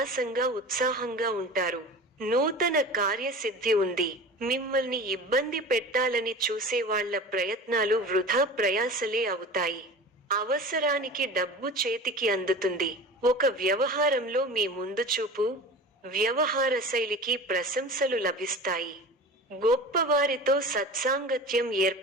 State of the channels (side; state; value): both; normal; correlation 0.36